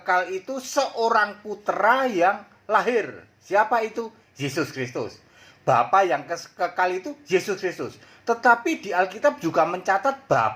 itu seorang putra yang lahir. Siapa itu? Yesus Kristus. Bapa yang kekal itu Yesus Kristus. Tetapi di Alkitab juga mencatat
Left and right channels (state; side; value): identical; both; correlation 1.00